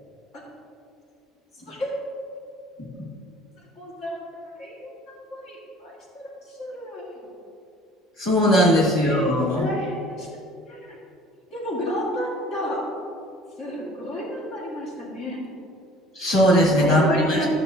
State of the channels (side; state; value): both; normal; correlation 0.51